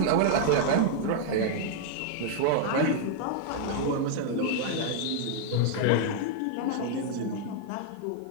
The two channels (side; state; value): both; different; correlation -0.01